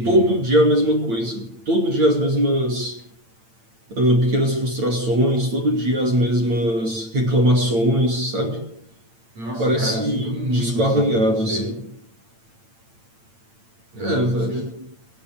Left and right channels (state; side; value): late; left; 8.9 ms